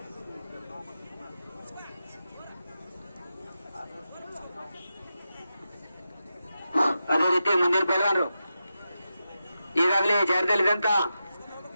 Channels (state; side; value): inverted; both; correlation -0.90